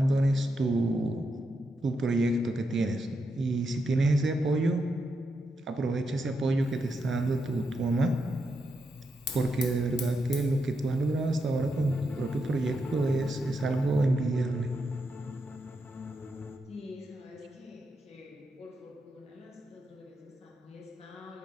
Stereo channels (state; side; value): normal; both; correlation 0.83